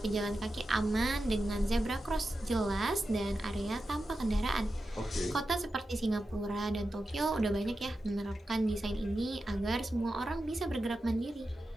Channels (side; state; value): both; normal; correlation 0.91